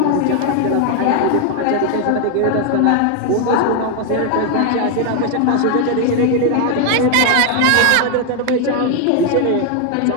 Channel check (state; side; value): different; both; correlation 0.00